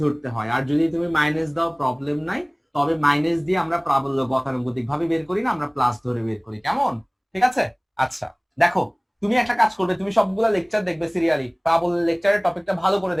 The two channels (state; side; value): identical; both; correlation 1.00